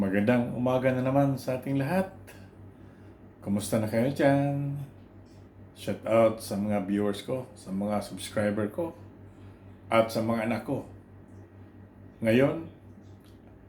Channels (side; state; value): both; identical; correlation 1.00